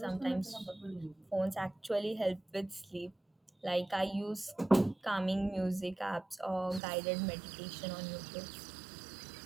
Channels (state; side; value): drops out; left; at 6.8 s